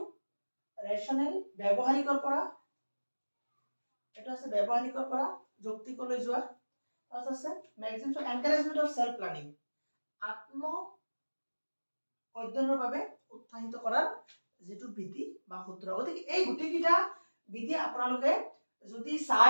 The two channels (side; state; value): both; inverted; correlation -1.00